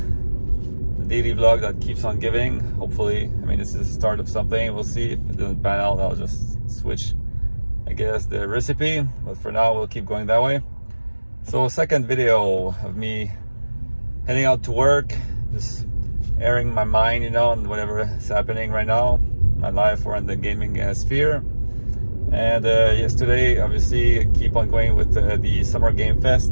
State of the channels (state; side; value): inverted; both; correlation -1.00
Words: daily vlog that keeps on giving. Hopefully, I mean, this is the start of something. We'll see. If it doesn't pan out, I'll just switch, I guess, the recipe. But for now, we'll keep going that way. So, second video of me heading out to work, just airing my mind, you know, on whatever is happening right now, my life or in the gaming sphere. And yesterday, obviously, keep on going with the Summer Game